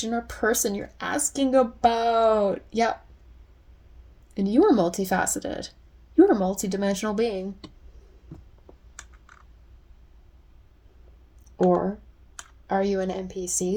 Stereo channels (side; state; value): both; identical; correlation 1.00